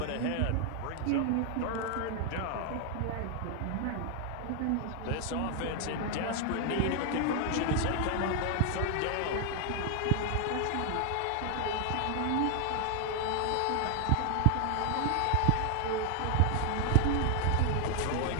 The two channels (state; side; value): different; both; correlation 0.00